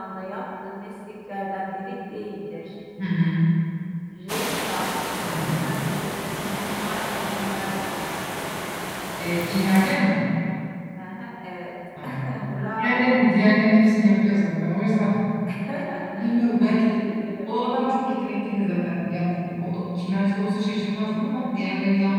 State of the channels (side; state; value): both; identical; correlation 1.00